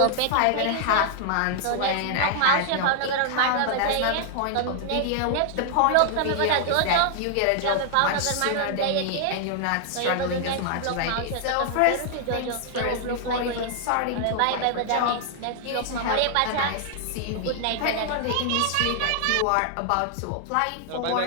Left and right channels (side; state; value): both; different; correlation 0.00